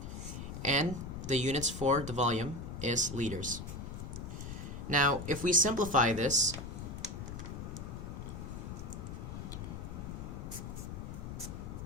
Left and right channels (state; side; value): noise; left; rumble, 7 dB below the sound